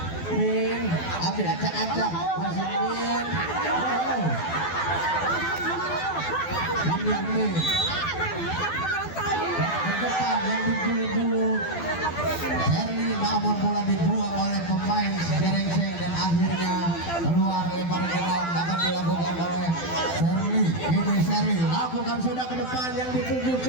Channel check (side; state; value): right; late; 12 ms